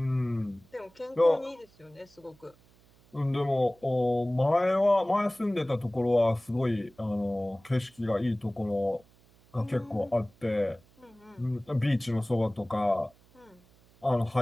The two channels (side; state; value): right; noise; hum, 30 dB below the sound